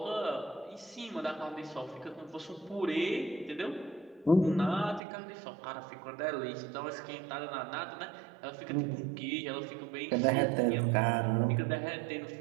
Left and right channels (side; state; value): left; drops out; at 5.0 s